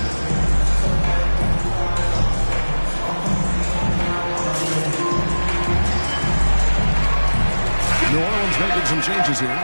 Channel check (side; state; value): both; inverted; correlation -1.00